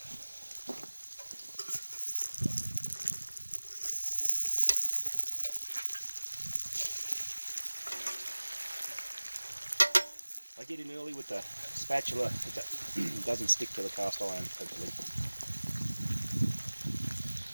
I get in early with the spatula, it doesn't stick to the cast iron, hopefully.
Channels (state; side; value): inverted; both; correlation -1.00